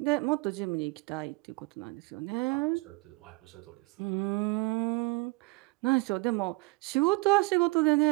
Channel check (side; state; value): left; quieter; 26.1 dB